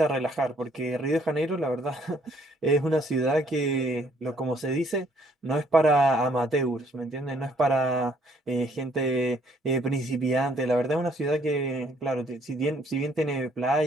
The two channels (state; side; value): normal; both; correlation 0.65